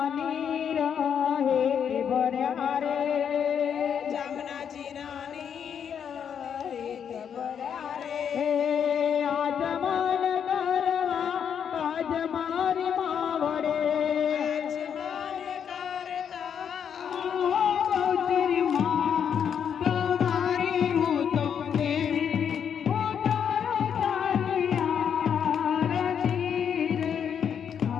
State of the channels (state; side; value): quieter; right; 8.0 dB